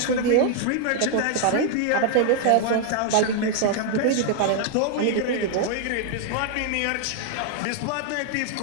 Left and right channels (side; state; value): both; different; correlation 0.00